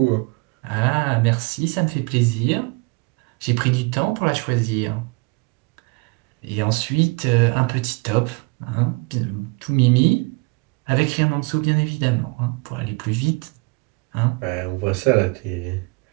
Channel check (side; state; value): left; quieter; 28.6 dB